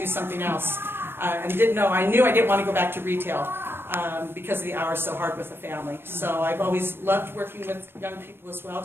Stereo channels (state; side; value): late; left; 0.11 ms